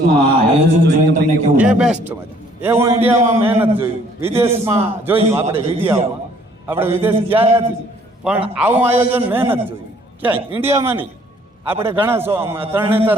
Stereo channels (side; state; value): both; normal; correlation 0.60